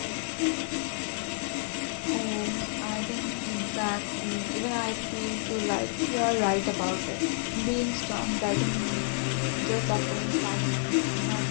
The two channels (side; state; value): right; silent; digital silence